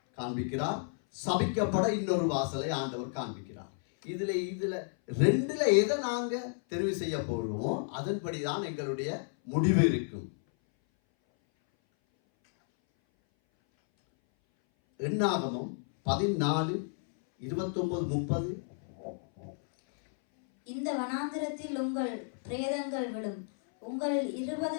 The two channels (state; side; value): silent; right; 57 dB below the other